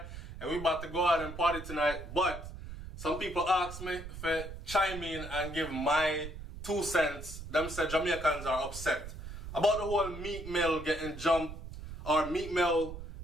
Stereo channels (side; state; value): right; noise; rumble, 10 dB below the sound